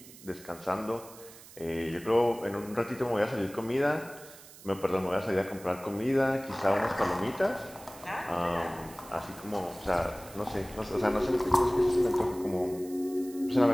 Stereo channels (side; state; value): right; noise; hiss, 19 dB below the sound